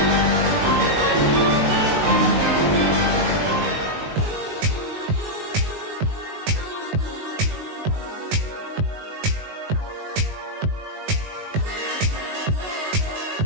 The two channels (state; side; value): late; left; 19 ms